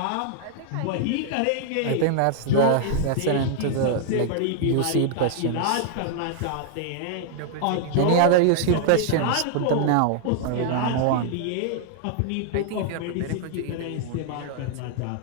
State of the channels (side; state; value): both; different; correlation -0.01